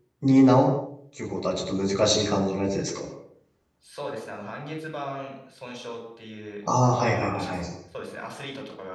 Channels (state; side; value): identical; both; correlation 1.00